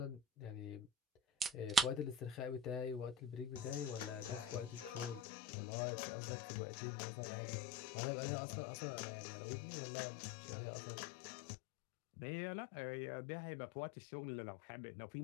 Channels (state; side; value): drops out; right; at 5.2 s